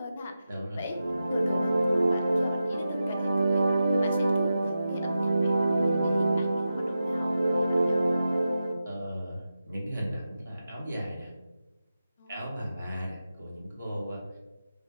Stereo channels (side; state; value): both; inverted; correlation -0.91